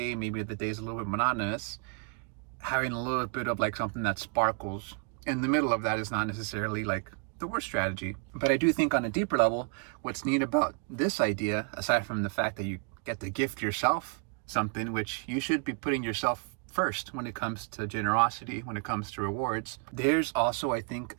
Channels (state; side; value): quieter; left; 38.1 dB